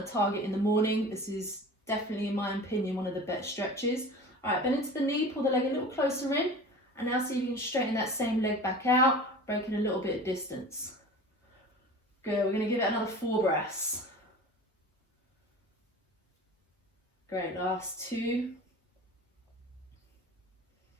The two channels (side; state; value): both; normal; correlation 0.38